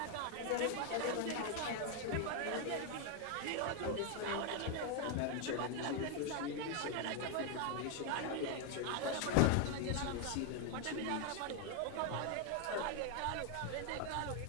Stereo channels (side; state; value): both; different; correlation 0.01